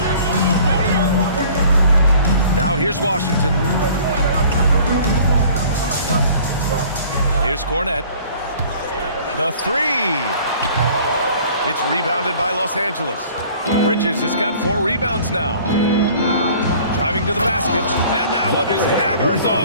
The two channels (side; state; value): both; inverted; correlation -0.50